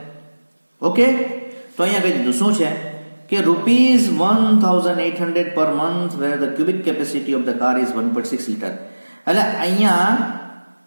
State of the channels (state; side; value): inverted; both; correlation -1.00